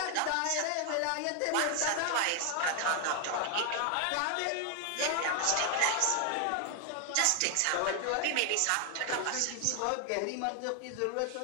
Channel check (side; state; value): both; different; correlation 0.00